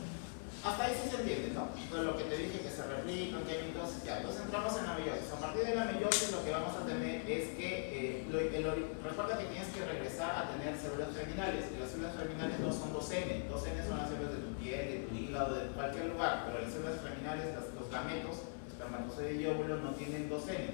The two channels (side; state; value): right; silent; 50 dB below the other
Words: hasta ahí sí se entiende, ¿no? Pues lo que te dije, que se replican, que hay mitosis, ya. Entonces entramos en la meiosis. A partir de la meiosis lo que vamos a tener es que, recuerda que tienes que regresar a tener células germinales, y las células germinales no son 2N, 2N son las células de tu piel, de tu hígado, de cualquier lugar, pero las células germinales, los gametos, espermatozoide y óvulo no tienen 2N,